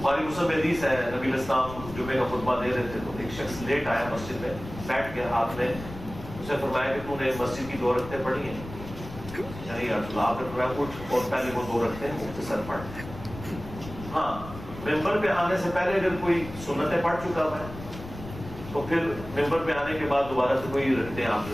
مسلم میں حدیث ہے, نبی علیہ السلام جمعے کا خطبہ دے رہے تھے تو ایک شخص لیٹ آیا مسجد میں, بیٹھ گیا. آپ نے اسے فرمایا کہ تو نے مسجد کی 2 رکعتیں پڑھی ہیں, یعنی آپ نے فرمایا اٹھ اور پہلے وہ 2 رکعتیں مختصر پڑھ. ہاں, ممبر پہ آنے سے پہلے اگر کوئی سنتیں پڑھ چکا ہے تو پھر ممبر پہ آنے کے بعد دوبارہ سے کوئی رکعتیں آپ نے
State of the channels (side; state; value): left; noise; rumble, 13 dB below the sound